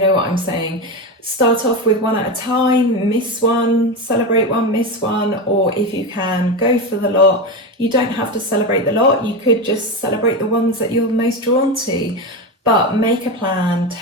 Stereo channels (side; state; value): both; normal; correlation 0.17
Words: know what I'm saying. Start off with one at a time, miss one, celebrate one, miss one, or if you can, go for the lot. You don't have to celebrate the lot, you could just celebrate the ones that you're most drawn to. But make a plan,